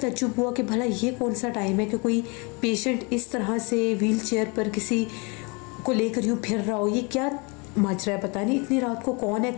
हुआ कि भला ये कौन सा टाइम है कि कोई पेशेंट इस तरह से व्हील चेयर पर किसी को लेकर यूँ फिर रहा हो। ये क्या माजरा है, पता नहीं इतनी रात को कौन है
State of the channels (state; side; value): quieter; right; 30.4 dB